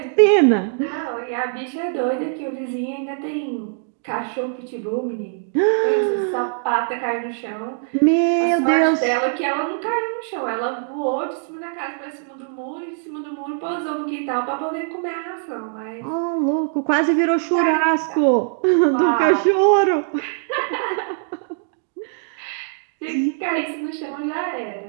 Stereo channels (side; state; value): left; silent; digital silence